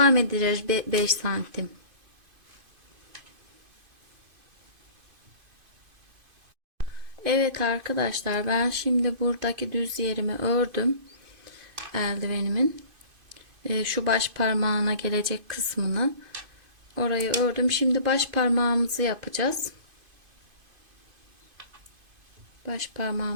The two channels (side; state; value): left; late; 2.5 ms